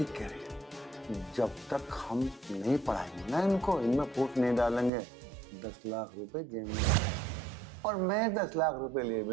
कह रही है। जब तक हम नहीं पढ़ाएंगे ना इनको, इनमें फूट नहीं डालेंगे, 10 लाख रुपए जेब में, और मैं 10 लाख रुपए लिए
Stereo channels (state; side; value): drops out; left; at 4.9 s